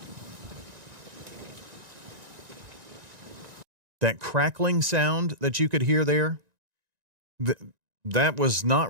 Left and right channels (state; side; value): late; left; 1.9 ms